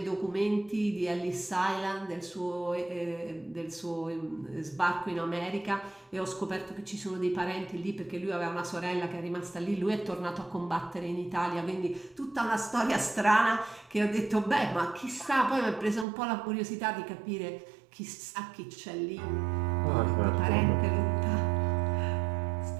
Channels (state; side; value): drops out; left; at 16.1 s